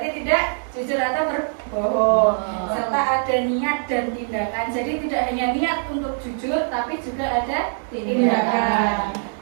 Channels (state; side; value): silent; left; digital silence